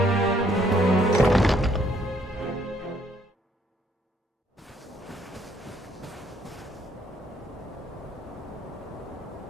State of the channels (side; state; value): both; normal; correlation 0.67